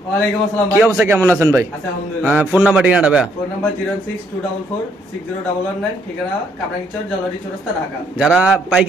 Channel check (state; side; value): normal; both; correlation 0.70